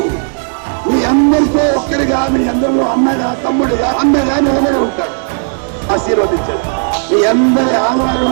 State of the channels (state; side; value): silent; left; 59 dB below the other